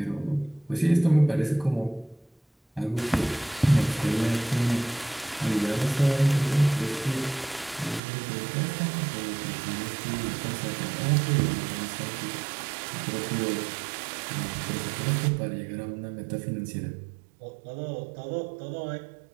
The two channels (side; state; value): left; drops out; at 8.0 s